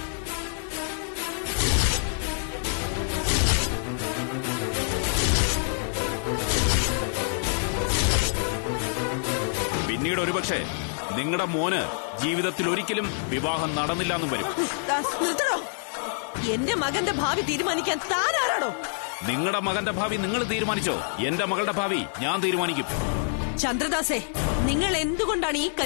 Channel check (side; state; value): right; silent; 61 dB below the other